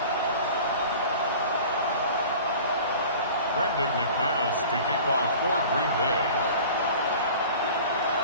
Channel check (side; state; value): both; inverted; correlation -0.42